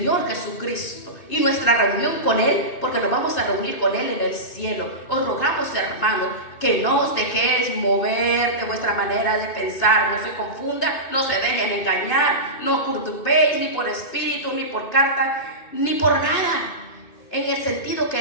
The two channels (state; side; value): late; right; 2.6 ms